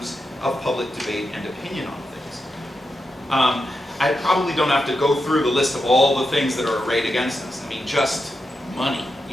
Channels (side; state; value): both; normal; correlation 0.87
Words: of public debate and opinion on things. I probably don't have to go through the list of all the things that are arrayed against us. I mean, just money,